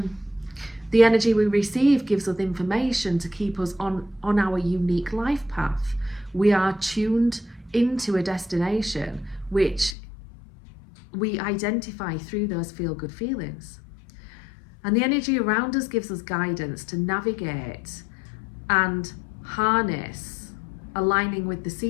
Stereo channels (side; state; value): right; drops out; at 10.0 s